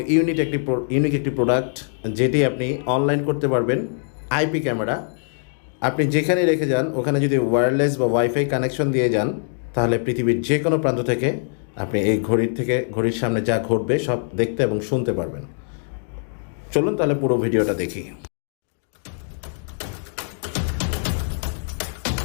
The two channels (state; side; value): silent; right; 64 dB below the other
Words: ইউনিক একটি প্রোডাক্ট, যেটি আপনি অনলাইন করতে পারবেন। আইপি ক্যামেরা আপনি যেখানে রেখে যান ওখানে যদি ওয়্যারলেস বা ওয়াইফাই কানেকশন দিয়ে যান, তাহলে পৃথিবীর যে কোনো প্রান্ত থেকে আপনি এই ঘড়ির সামনে যা ঘটবে সব দেখতে এবং শুনতে পারবেন। চলুন তাহলে পুরো ভিডিওটা দেখি।